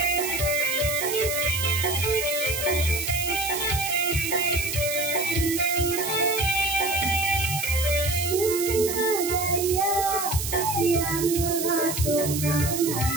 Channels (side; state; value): right; noise; hiss, 4 dB below the sound